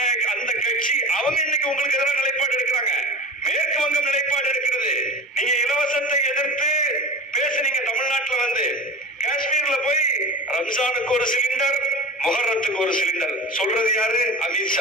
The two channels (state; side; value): normal; both; correlation 0.32